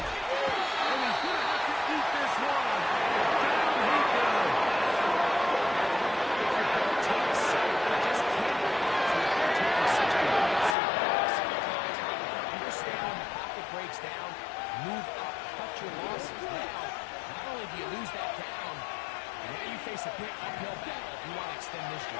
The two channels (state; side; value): drops out; right; at 10.8 s